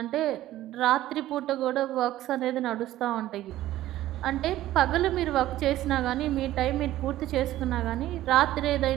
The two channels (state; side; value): quieter; left; 14.5 dB